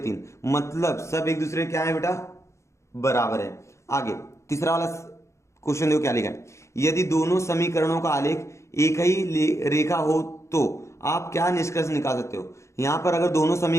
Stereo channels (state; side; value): late; right; 0.14 ms